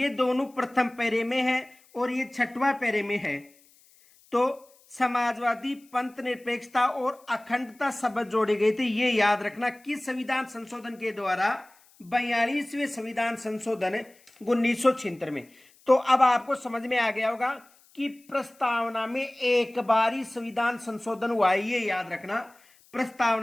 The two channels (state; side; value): noise; left; hiss, 29 dB below the sound